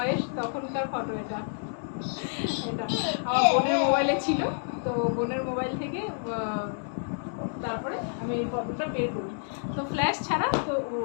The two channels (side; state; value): right; silent; digital silence